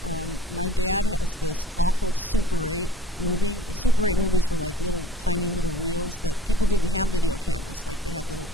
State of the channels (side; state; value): both; normal; correlation 0.49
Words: My dad has this awful Super 8 movie. Super 8 movies were like tiny little reels that people didn't have video cameras, like they had little